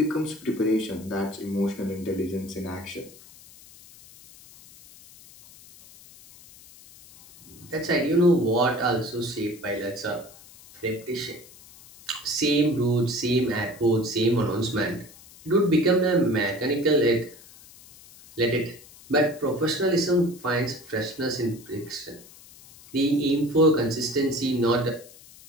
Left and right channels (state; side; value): noise; left; hiss, 22 dB below the sound